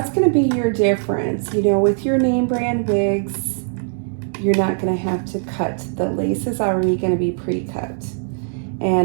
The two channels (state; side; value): silent; left; digital silence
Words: gonna be your difference. You know, with your name brand wigs, you're not gonna have to cut. The lace is already gonna be pre-cut.